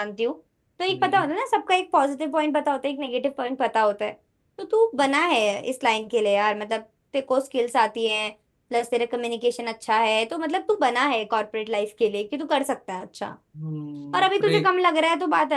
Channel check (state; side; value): identical; both; correlation 1.00